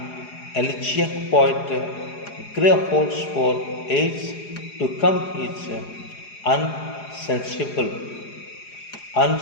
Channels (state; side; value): late; right; 4.8 ms